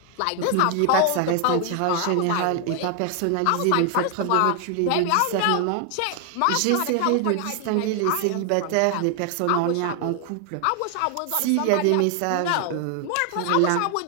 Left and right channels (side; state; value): both; different; correlation 0.00